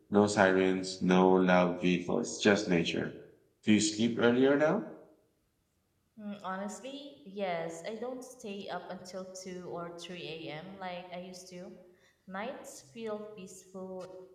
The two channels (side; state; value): both; identical; correlation 1.00